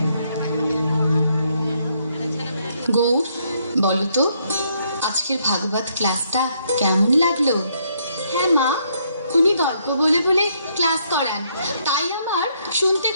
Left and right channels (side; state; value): both; inverted; correlation -0.72